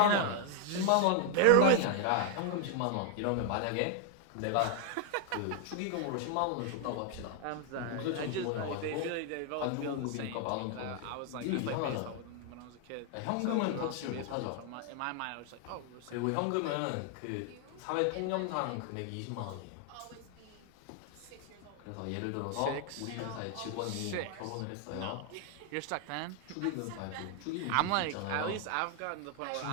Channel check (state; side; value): different; both; correlation 0.00